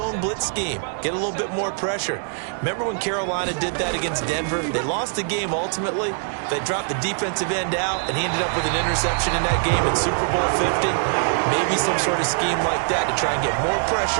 blitz scheme, get a little bit more pressure. Remember when Carolina did that against Denver? They lost the game ultimately. They dropped the defensive end out, and he ended up with an interception in that game in Super Bowl 50. Maybe some sort of scheme like that to try and get more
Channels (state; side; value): silent; left; 62 dB below the other